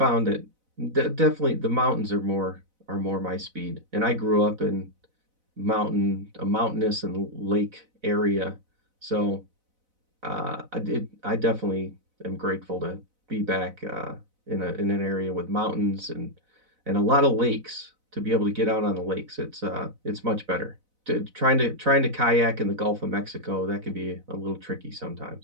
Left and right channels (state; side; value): late; left; 4.0 ms